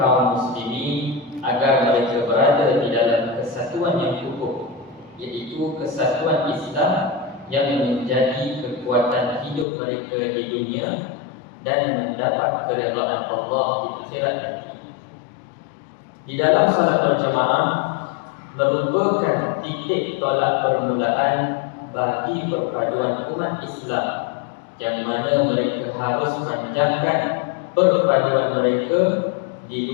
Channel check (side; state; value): right; drops out; at 9.7 s